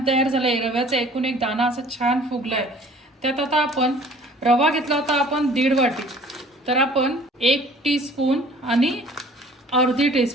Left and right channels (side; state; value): both; normal; correlation 0.51